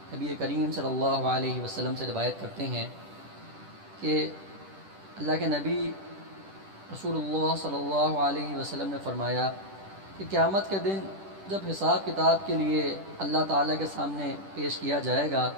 نبی کریم صلی اللہ علیہ وسلم سے روایت کرتے ہیں کہ اللہ کے نبی رسول اللہ صلی اللہ علیہ وسلم نے فرمایا کہ قیامت کے دن جب حساب کتاب کے لیے اللہ تعالیٰ کے سامنے پیش کیا جائے گا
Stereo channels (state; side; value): late; left; 10 ms